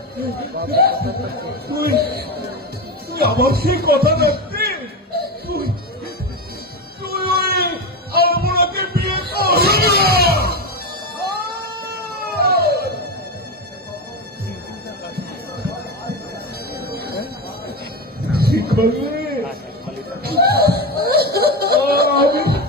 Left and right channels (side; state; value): both; normal; correlation 0.17